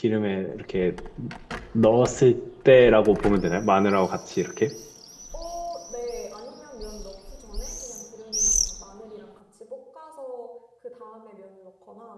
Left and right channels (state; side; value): identical; both; correlation 1.00